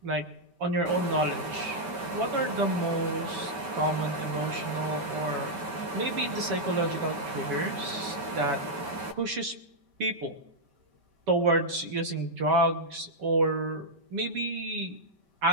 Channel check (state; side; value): late; left; 5.2 ms